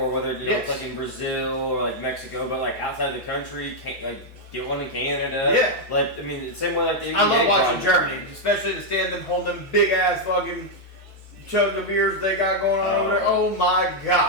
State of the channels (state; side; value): normal; both; correlation -0.01